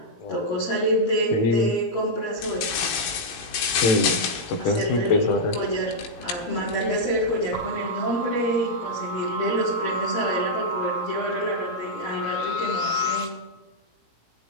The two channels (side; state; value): right; late; 18 ms